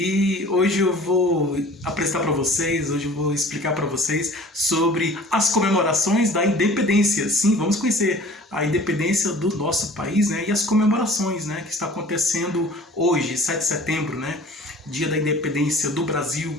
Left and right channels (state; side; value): normal; both; correlation 0.46